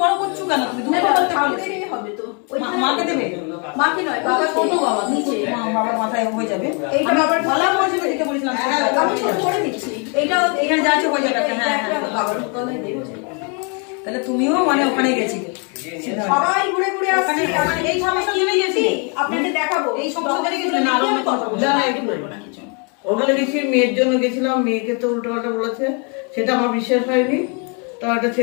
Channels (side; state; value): right; quieter; 36.0 dB